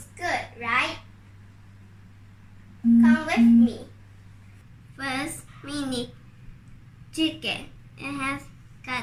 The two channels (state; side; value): identical; both; correlation 1.00